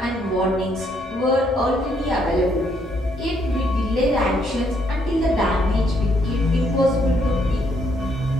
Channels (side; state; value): both; normal; correlation 0.72